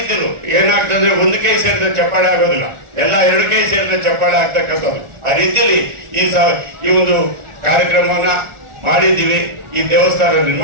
ಏನಾಗ್ತದೆ, ಒಂದು ಕೈ ಸೇರಿದ ಚಪ್ಪಾಳೆ ಆಗೋದಿಲ್ಲ, ಎಲ್ಲ 2 ಕೈ ಸೇರಿದ ಚಪ್ಪಾಳೆ ಆಗ್ತಕ್ಕಂಥದ್ದು. ಆ ರೀತಿಯಲ್ಲಿ ಈ ಒಂದು ಕಾರ್ಯಕ್ರಮವನ್ನ ಮಾಡಿದ್ದೀವಿ. ಈ ದೇವಸ್ಥಾನ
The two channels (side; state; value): left; late; 1.4 ms